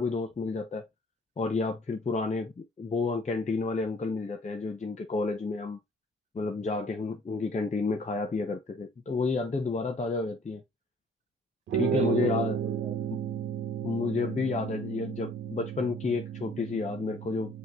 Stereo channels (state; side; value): normal; both; correlation 0.56